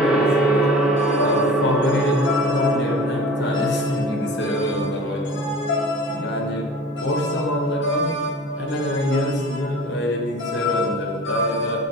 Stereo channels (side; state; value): both; normal; correlation 0.40